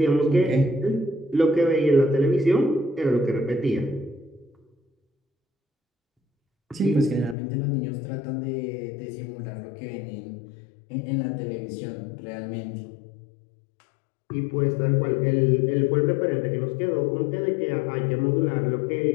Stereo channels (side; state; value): right; drops out; at 7.4 s